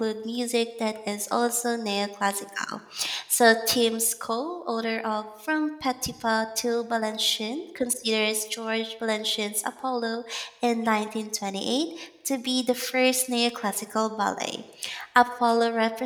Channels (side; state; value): both; identical; correlation 1.00